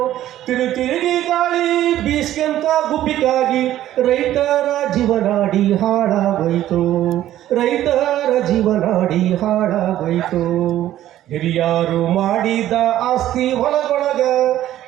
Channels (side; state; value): left; quieter; 13.1 dB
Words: ತಿರುತಿರುಗಿ ಗಾಳಿ ಬೀಸ್ಕೆಂತ ಗುಬ್ಬಿಗಾಗಿ ರೈತರ ಜೀವನಾಡಿ ಹಾಳಾಗೋಯ್ತು, ರೈತರ ಜೀವನಾಡಿ ಹಾಳಾಗೋಯ್ತು. ಹಿರಿಯಾರು ಮಾಡಿದ ಆಸ್ತಿ ಹೊಲದೊಳಗ,